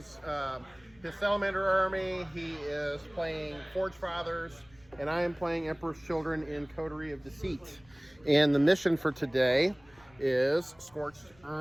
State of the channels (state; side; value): noise; left; rumble, 29 dB below the sound